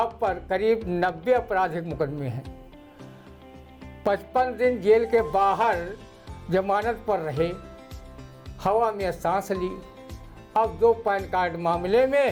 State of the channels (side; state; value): both; identical; correlation 1.00